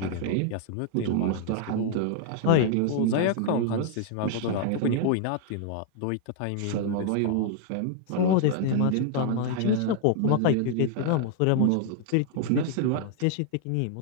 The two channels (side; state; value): both; different; correlation 0.00